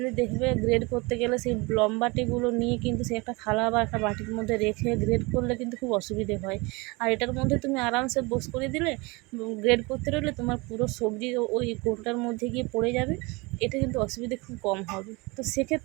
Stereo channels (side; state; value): left; quieter; 26.2 dB